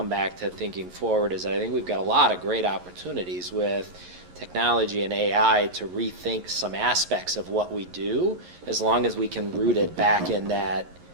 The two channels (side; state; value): left; late; 11 ms